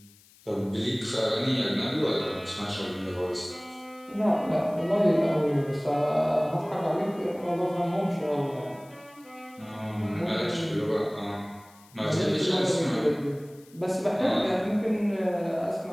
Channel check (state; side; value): noise; left; hiss, 27 dB below the sound